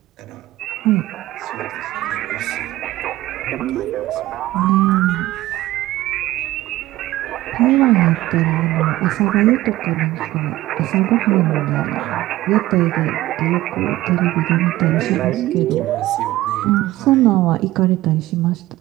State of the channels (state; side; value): quieter; left; 16.5 dB